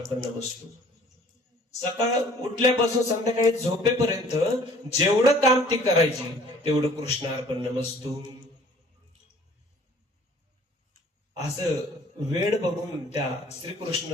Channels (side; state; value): both; normal; correlation 0.53